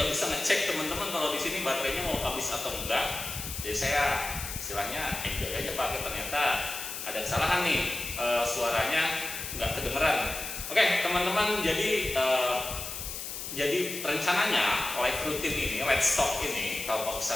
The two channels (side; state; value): left; noise; hiss, 7 dB below the sound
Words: bisa ngecek teman-teman kalau di sini baterainya mau habis atau enggak. Jadi saya istilahnya enjoy aja pakai. Ternyata ada kesalahan nih, suaranya nggak kedengeran. Oke, teman-teman, jadi rencananya live rutin ini, Let's Talk ini, Kelompok